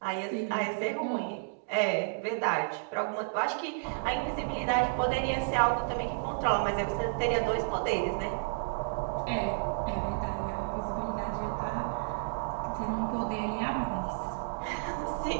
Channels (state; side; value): silent; left; digital silence